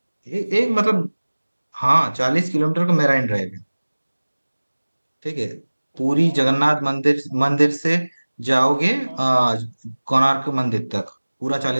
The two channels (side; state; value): both; inverted; correlation -1.00